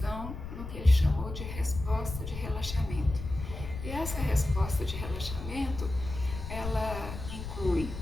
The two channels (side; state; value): left; noise; rumble, 8 dB below the sound